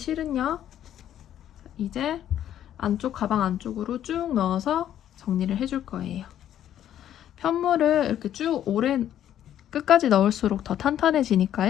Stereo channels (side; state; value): right; quieter; 11.0 dB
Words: 이제 안쪽 가방 안쪽으로 쭉 넣어서 정리를 해줄 거예요. 편물을 이렇게 쭉 오래 끝까지 넣을수록 더